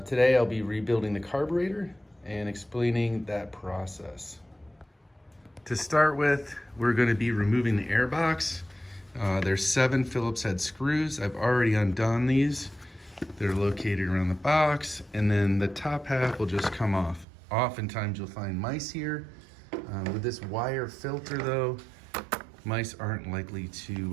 Today I'll be rebuilding the carburetor and explaining that process. To start with, we're going to be removing the air box. There's 7 Phillips head screws. I've already undone these. They're located around the box, and then the top half will just come off. Oftentimes you'll find mice here. With this wire filter though, mice aren't likely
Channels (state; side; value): drops out; left; at 17.2 s